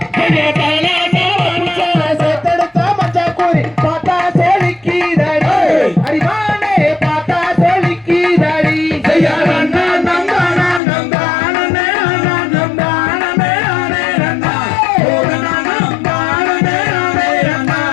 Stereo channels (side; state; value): right; drops out; at 10.8 s